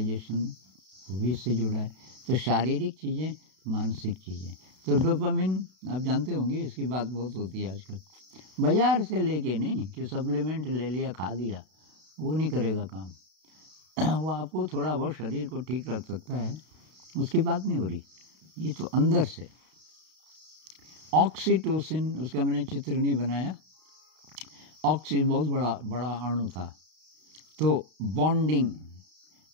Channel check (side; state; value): left; late; 32 ms